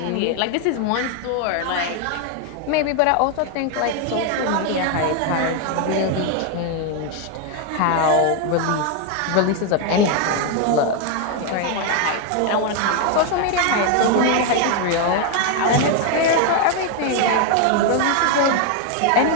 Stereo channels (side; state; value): both; different; correlation 0.01